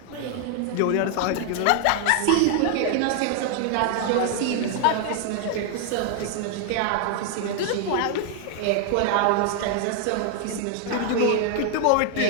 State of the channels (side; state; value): both; different; correlation 0.00